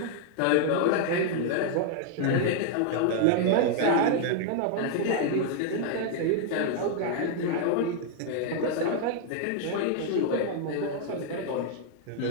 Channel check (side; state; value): both; different; correlation 0.00